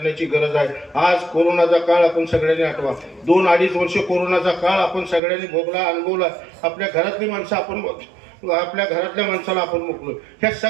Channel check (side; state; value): left; drops out; at 5.2 s